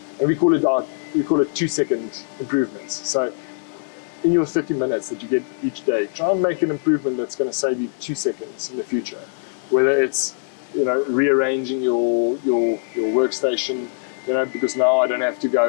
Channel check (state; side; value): silent; right; 60 dB below the other